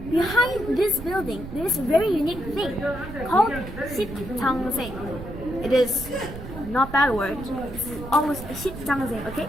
behind this building there is a very unique thing called 십장생. It is not bad word. It's almost 십장생. Okay,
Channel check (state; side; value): noise; right; rumble, 11 dB below the sound